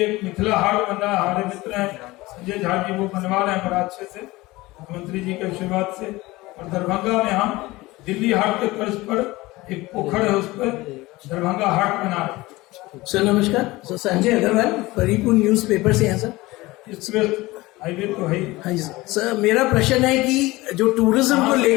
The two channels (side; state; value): right; quieter; 20.2 dB